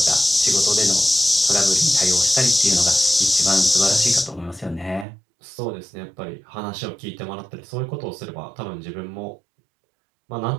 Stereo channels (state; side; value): drops out; left; at 5.1 s